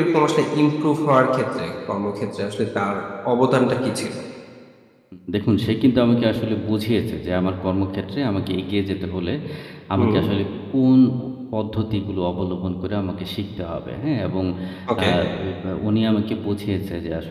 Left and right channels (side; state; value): both; identical; correlation 1.00